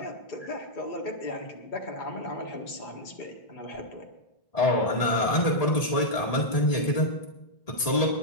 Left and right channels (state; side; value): late; right; 1.8 ms